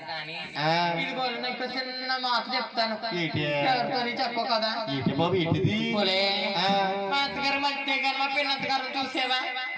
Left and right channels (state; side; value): identical; both; correlation 1.00